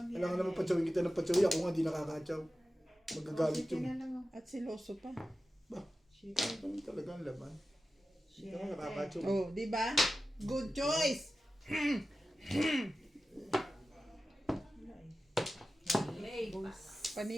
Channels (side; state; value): both; normal; correlation 0.94